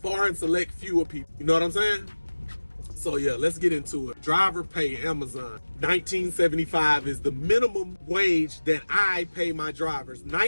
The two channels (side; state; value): both; inverted; correlation -1.00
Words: and select few of people. You know what I'm saying? So yeah, let's get into it. Driver pay, Amazon. $19.75 is the minimum wage that I pay my drivers.